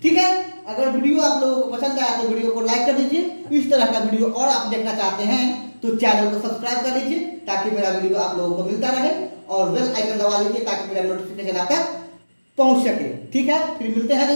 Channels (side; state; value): both; inverted; correlation -1.00